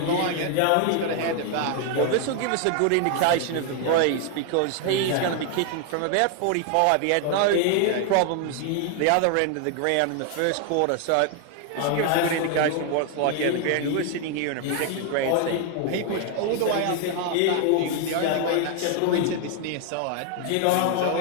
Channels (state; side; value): different; both; correlation 0.01